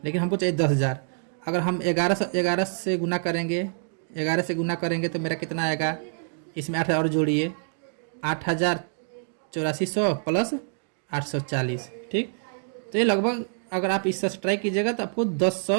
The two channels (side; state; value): left; silent; digital silence